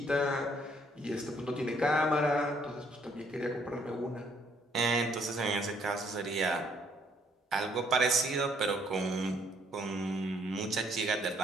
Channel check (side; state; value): both; normal; correlation 0.67